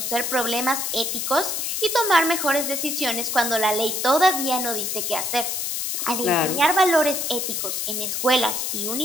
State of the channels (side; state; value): left; noise; hiss, 2 dB below the sound